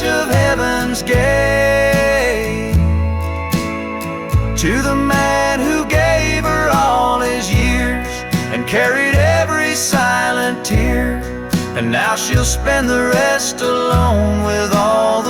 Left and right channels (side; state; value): both; identical; correlation 1.00